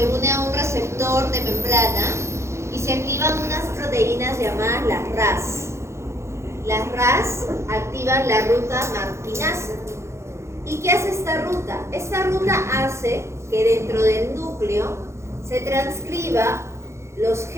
une a un receptor de membrana y se activan unas proteínas llamadas las RAS. Las RAS activan la ruta MAP quinasa. ¿Y qué hace esta ruta? Esta ruta hace que dentro del núcleo se transcriba los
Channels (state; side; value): late; left; 0.13 ms